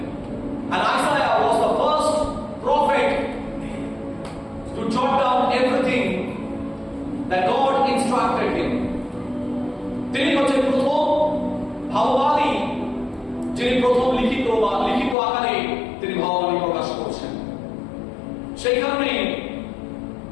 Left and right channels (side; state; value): right; drops out; at 15.2 s